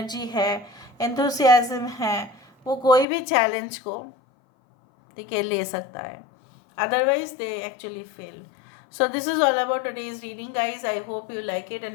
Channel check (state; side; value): drops out; right; at 3.1 s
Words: है, एंथुसियाज्म है, वो कोई भी चैलेंज को, ठीक है, ले सकता है। Otherwise they actually fail. So this is all about today's reading, guys. I hope you like it,